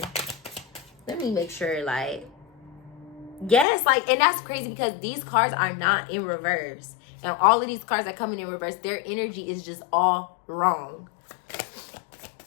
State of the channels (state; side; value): drops out; right; at 3.7 s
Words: Let me make sure, like, yes, like, and that's crazy because these cards are not in reverse. And all of these cards are coming in reverse. Their energy is just all wrong.